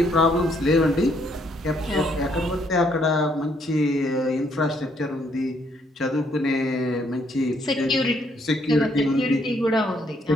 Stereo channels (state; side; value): normal; both; correlation 0.70